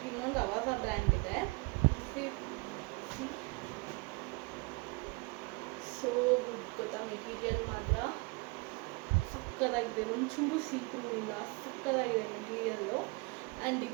ಇನ್ನೊಂದು ಅವಾಜ ಬ್ರ್ಯಾಂಡ್ ಇದೆ. ಸೋ ಗುಡ್ ಗೊತ್ತಾ, ಮೆಟೀರಿಯಲ್ ಮಾತ್ರ ಸಕ್ಕದಾಗಿದೆ, ಒಂಚೂರು ಸೀಕ್ರೂ ಇಲ್ಲ, ಸಕ್ಕದಾಗಿದೆ ಮೆಟೀರಿಯಲ್ಲು. ಆ್ಯಂಡ್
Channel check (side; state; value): left; quieter; 28.6 dB